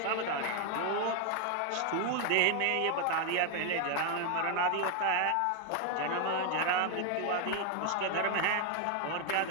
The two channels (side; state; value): both; different; correlation 0.01